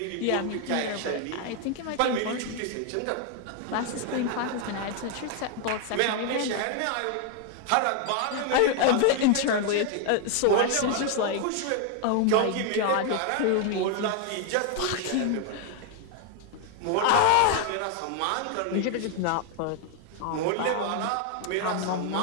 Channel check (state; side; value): different; both; correlation 0.00